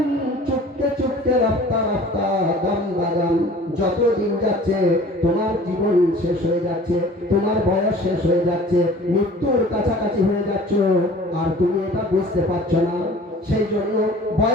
चुपके चुपके रफ्ता रफ्ता दम बदम, যত দিন যাচ্ছে তোমার জীবন শেষ হয়ে যাচ্ছে, তোমার বয়স শেষ হয়ে যাচ্ছে, মৃত্যুর কাছাকাছি হয়ে যাচ্ছ, আর তুমি এটা বুঝতে পারছো না। সেই জন্য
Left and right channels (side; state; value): both; normal; correlation 0.46